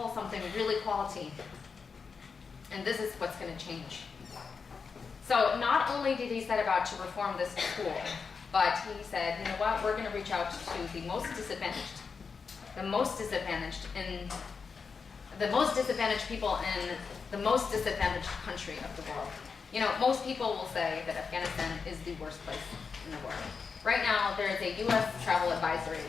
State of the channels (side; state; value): right; quieter; 5.4 dB